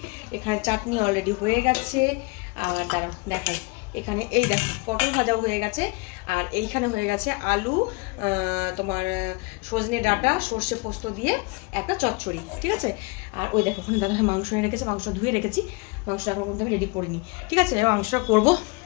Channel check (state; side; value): quieter; right; 28.4 dB